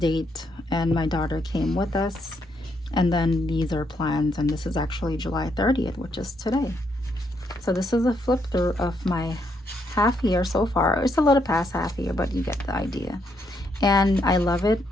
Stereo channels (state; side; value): normal; both; correlation 0.76